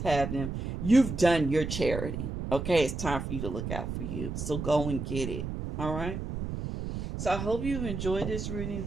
them. You've done your charity. Okay, it's time for you to look out for you. So go and get it. All right. So I hope you've enjoyed this reading,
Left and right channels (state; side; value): noise; right; rumble, 5 dB below the sound